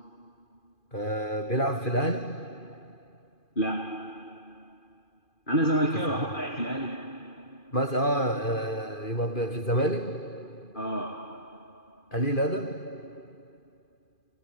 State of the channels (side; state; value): right; late; 2.4 ms